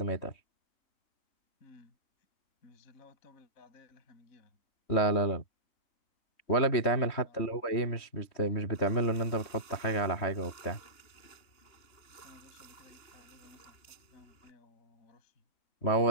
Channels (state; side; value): late; right; 3.2 ms